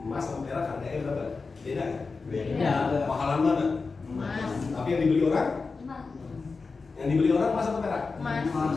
Emas sama perak harganya berapa? Beda kan? Beda. Mahalan mana? Emas. Tapi yang dibeli orang? Yang dibeli orang emas atau perak? Emas.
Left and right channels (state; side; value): quieter; right; 4.3 dB